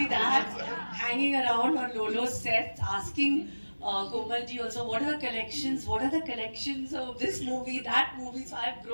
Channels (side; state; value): both; inverted; correlation -1.00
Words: that, hanging around on Lolo's set, asking Komal ji also, what are the collections? What are the collections of this movie, that movie? So I've